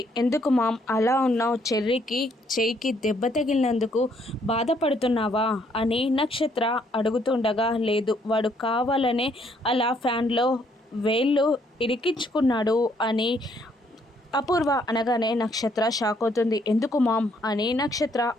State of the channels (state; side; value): normal; both; correlation 0.68